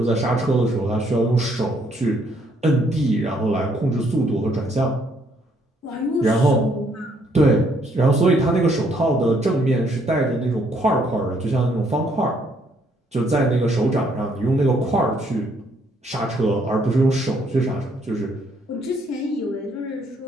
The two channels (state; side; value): normal; both; correlation 0.68